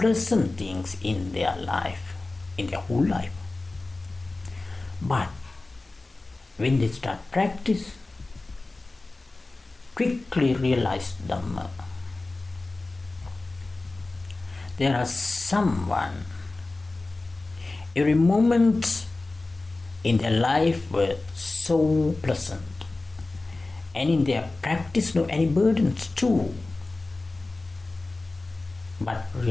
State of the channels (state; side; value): quieter; right; 3.2 dB